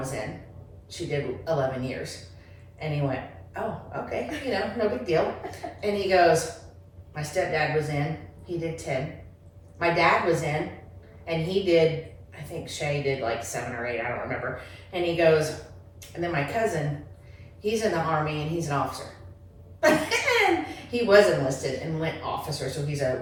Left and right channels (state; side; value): identical; both; correlation 1.00